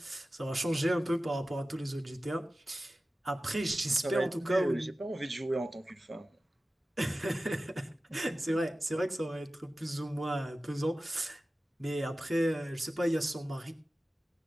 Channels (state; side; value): normal; both; correlation 0.95